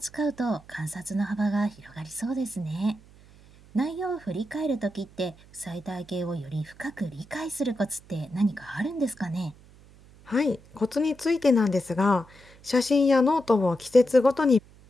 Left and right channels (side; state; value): right; noise; hum, 24 dB below the sound